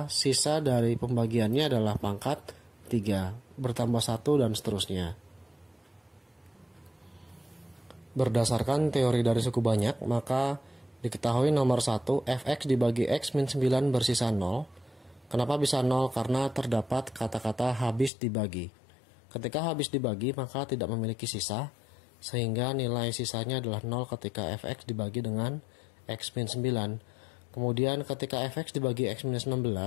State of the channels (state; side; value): drops out; right; at 18.1 s